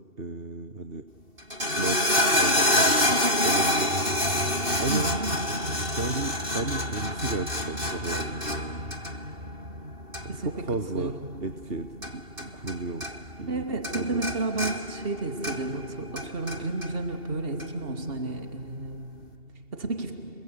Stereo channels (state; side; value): late; left; 2.7 ms